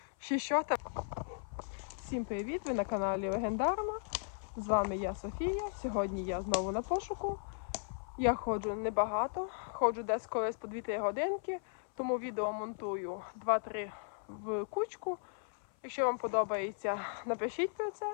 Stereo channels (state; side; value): silent; right; 54 dB below the other